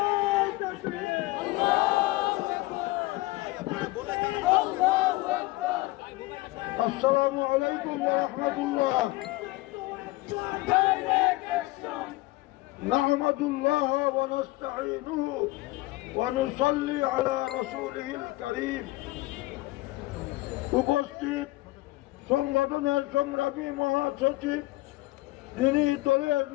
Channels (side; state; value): right; quieter; 20.0 dB